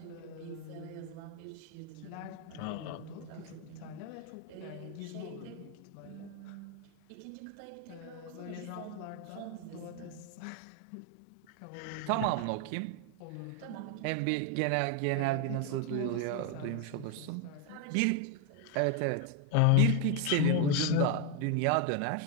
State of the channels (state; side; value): different; both; correlation 0.01